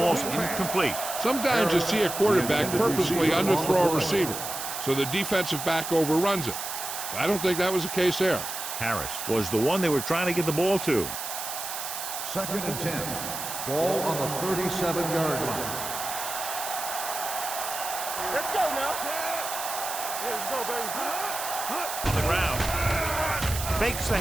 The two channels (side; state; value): right; noise; hiss, 6 dB below the sound